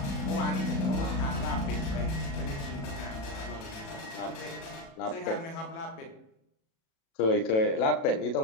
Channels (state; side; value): late; right; 37 ms